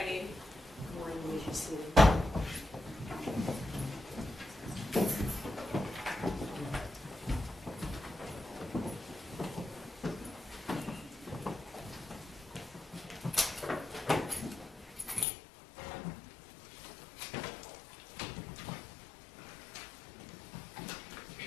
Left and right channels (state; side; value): drops out; right; at 15.2 s